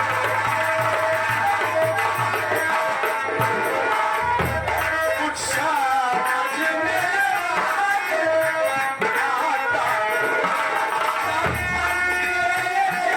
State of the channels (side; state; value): both; identical; correlation 1.00